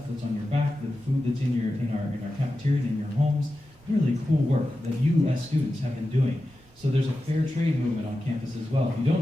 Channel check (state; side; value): normal; both; correlation 0.92